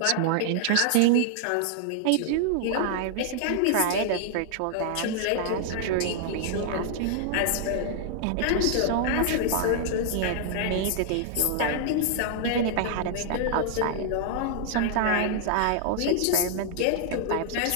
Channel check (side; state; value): both; different; correlation -0.01